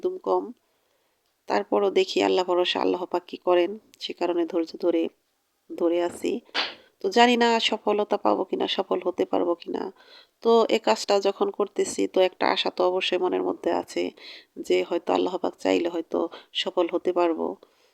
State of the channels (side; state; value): both; identical; correlation 1.00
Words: কম। তারপরও দেখি আল্লাহ ভরসা, আল্লাহ পাক কি করেন। সে কারণে ধৈর্য ধরে ধরে আছি। তো জানি না সফলতা পাবো কিনা, সফল হতে পারবো কিনা। তো এই কাজটা যখন করতেছি তো একটা আশা তো অবশ্যই মনের মধ্যে আছে যে হয়তো আল্লাহ পাক চাইলে হয়তো সফল হতে পারবো।